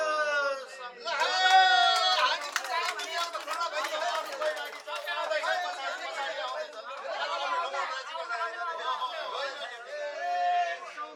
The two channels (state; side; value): identical; both; correlation 1.00